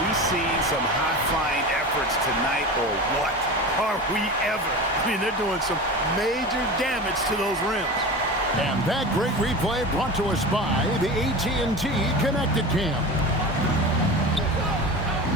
we seeing some high-flying efforts tonight or what? Are we ever? I mean, they're doing some major damage to those rims. And that great replay brought to us by the AT&T Connected Cam.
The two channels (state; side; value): normal; both; correlation 0.30